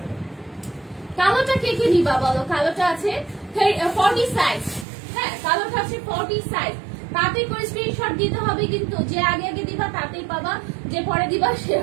কালোটা কে কে নিবা বলো? কালোটা আছে 40 সাইজ, হ্যাঁ? কালোটা আছে 40 সাইজ। তাতে করে স্ক্রিনশট দিতে হবে, কিন্তু যে আগে দিবা তাতেই পাবা, যে পরে দিবা সে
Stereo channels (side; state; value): left; drops out; at 4.9 s